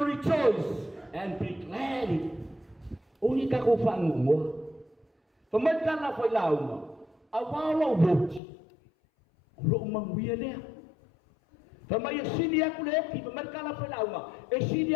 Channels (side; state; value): right; drops out; at 8.4 s